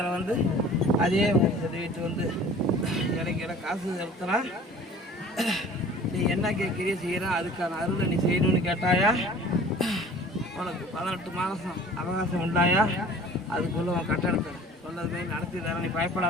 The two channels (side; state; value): both; normal; correlation 0.46